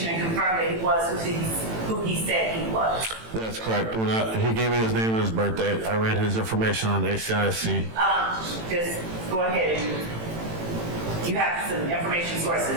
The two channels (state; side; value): late; left; 18 ms